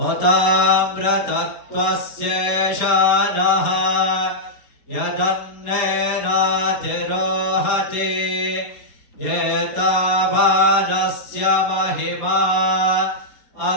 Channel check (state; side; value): late; right; 4.3 ms